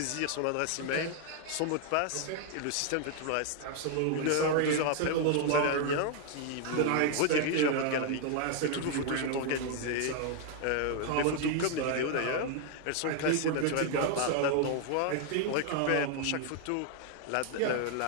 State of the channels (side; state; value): both; different; correlation 0.00